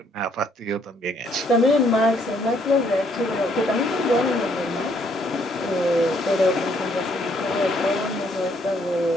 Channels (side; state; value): both; normal; correlation 0.68